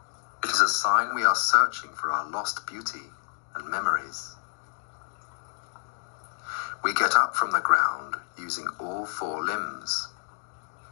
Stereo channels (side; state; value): right; silent; digital silence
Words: It is a sign we are searching for our lost beauty and memories. We get up from the ground using all four limbs,